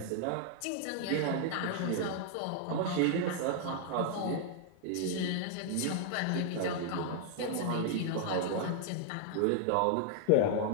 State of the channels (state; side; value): different; both; correlation 0.00